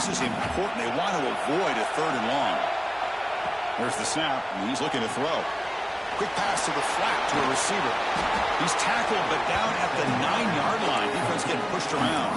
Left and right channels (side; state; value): both; identical; correlation 1.00